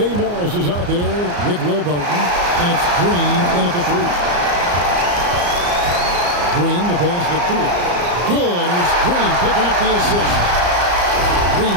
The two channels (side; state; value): left; late; 34 ms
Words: Morris is out there with Will Barton, and it's Green in at the 3. Green, the pass to Poole. Good, and it's Green picking up the assist.